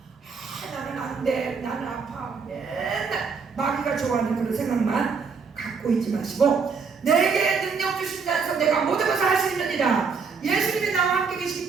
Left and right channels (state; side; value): quieter; left; 5.3 dB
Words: 나는 안 돼, 나는 아파, 맨날 마귀가 좋아하는 그런 생각만 갖고 있지 마시고 내게 능력 주신 자에서 내가 모든 것을 할 수 있느니라. 예수님이 나와 함께 계시기